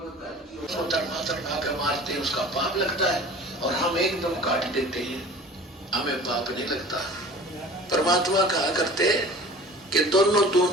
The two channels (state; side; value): normal; both; correlation 0.42